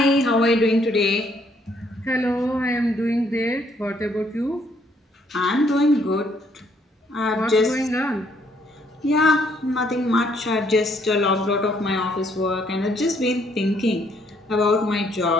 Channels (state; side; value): normal; both; correlation 0.68